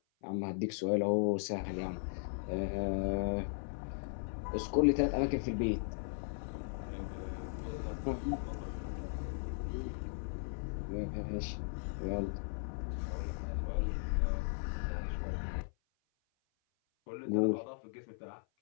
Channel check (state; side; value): silent; right; 53 dB below the other